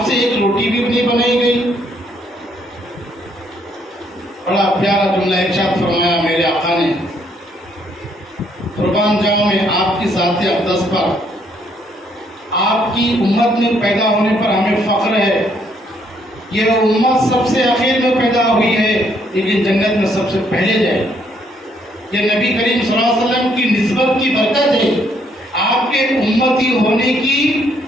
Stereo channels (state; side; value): normal; both; correlation 0.69